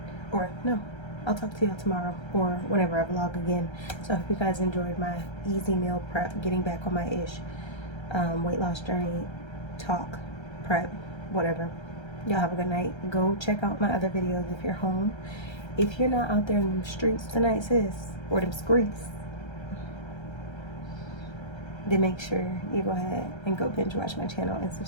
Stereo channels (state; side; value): late; right; 1.3 ms